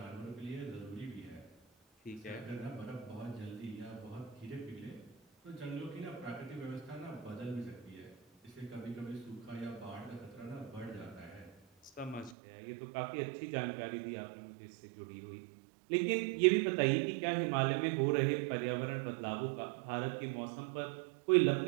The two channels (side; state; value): left; drops out; at 12.4 s